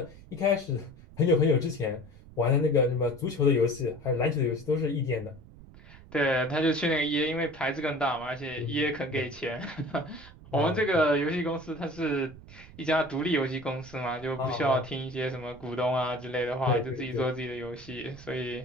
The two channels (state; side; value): noise; right; rumble, 20 dB below the sound